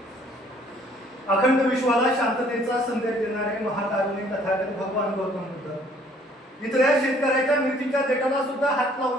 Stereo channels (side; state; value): both; normal; correlation 0.60